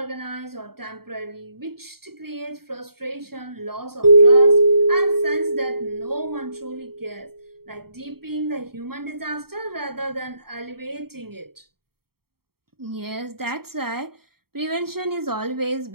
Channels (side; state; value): left; late; 0.94 ms